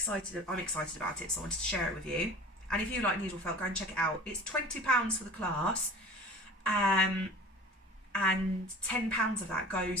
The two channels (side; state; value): both; normal; correlation 0.41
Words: about it, so I wanted to share it with you. And if you like needle felt, go and check it out. It's £20 for the class, and £10 of that